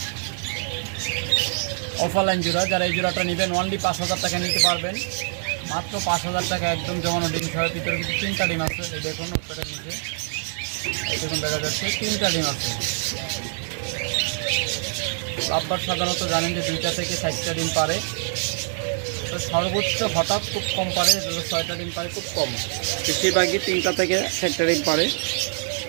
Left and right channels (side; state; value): left; silent; digital silence